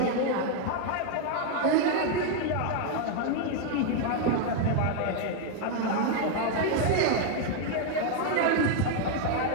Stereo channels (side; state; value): both; different; correlation 0.00